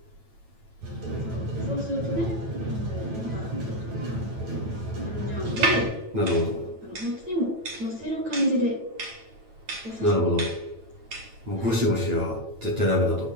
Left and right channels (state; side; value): late; left; 9.0 ms